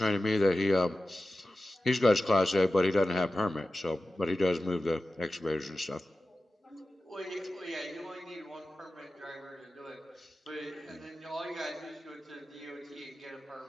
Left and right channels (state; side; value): normal; both; correlation 0.94